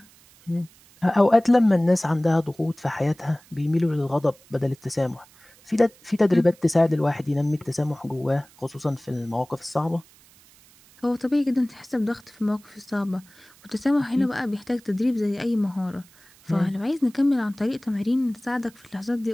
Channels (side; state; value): right; noise; hiss, 27 dB below the sound